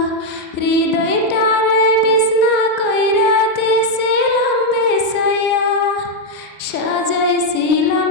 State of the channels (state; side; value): normal; both; correlation 0.01